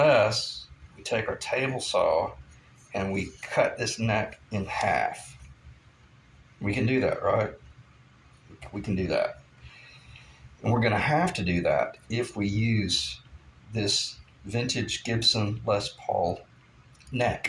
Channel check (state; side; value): identical; both; correlation 1.00